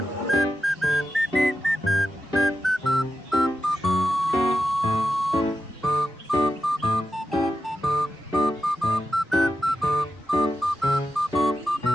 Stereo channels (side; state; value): both; normal; correlation 0.89